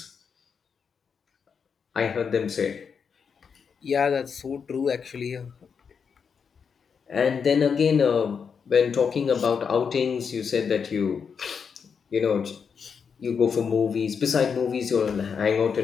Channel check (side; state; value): right; quieter; 6.3 dB